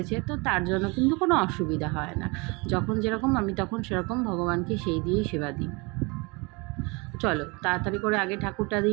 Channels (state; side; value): quieter; left; 28.0 dB